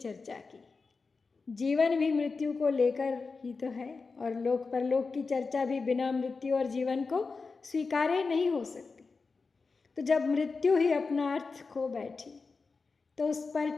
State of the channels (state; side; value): quieter; right; 4.4 dB